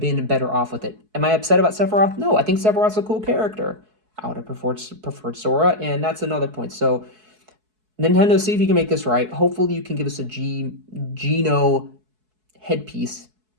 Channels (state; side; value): late; left; 4.7 ms